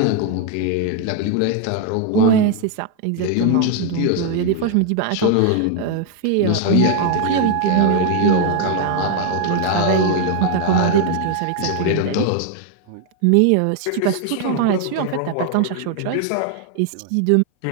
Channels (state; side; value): different; both; correlation 0.00